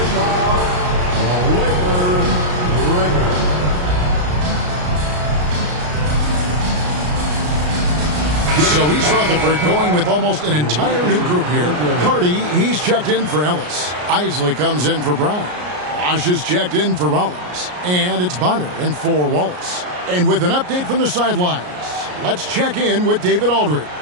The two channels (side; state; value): left; late; 33 ms